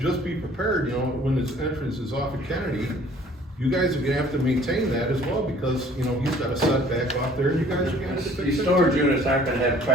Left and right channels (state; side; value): normal; both; correlation 0.54